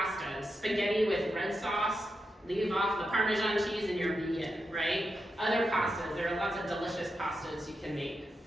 spaghetti with red sauce, leave off the Parmesan cheese and you're vegan, right? Other pastas, there are lots of delicious pastas you can make.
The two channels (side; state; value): both; normal; correlation 0.87